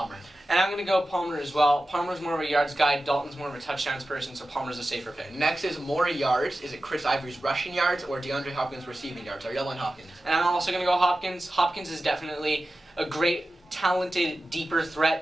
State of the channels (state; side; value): normal; both; correlation 0.94